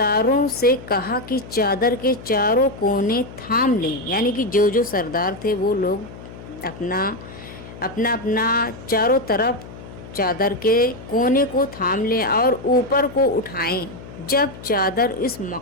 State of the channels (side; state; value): left; noise; hum, 15 dB below the sound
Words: سے کہا کہ چادر کے چاروں کونے تھام لیں، یعنی کہ جو سردار تھے وہ لوگ اپنا چاروں طرف چادر کے کونے کو تھام لیں اور اوپر کو اٹھائیں۔ جب چادر اس